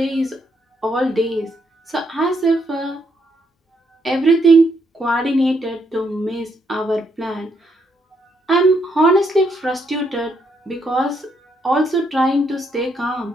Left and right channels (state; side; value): normal; both; correlation 0.75